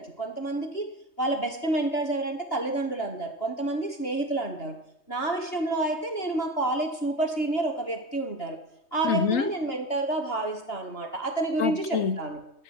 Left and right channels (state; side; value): late; right; 3.2 ms